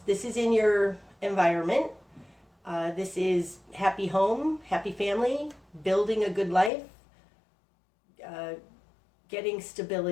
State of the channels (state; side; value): drops out; right; at 6.7 s